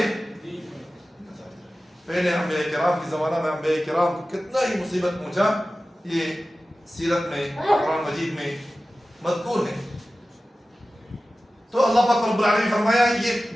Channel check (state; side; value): normal; both; correlation 0.95